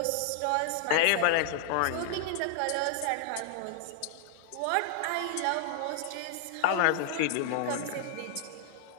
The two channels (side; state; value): both; different; correlation -0.01